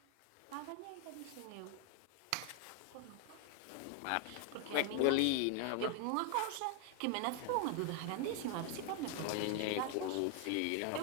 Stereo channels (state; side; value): different; both; correlation 0.00